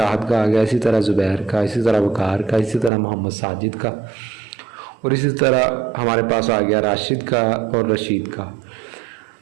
का आ गया, इसी तरह ज़ुबैर का, इसी तरह वकार का, इसी तरह मोहम्मद साजिद का, और इसी तरह हमारे पास आ गया राशिद का और रशीद का।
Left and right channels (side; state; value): left; drops out; at 2.9 s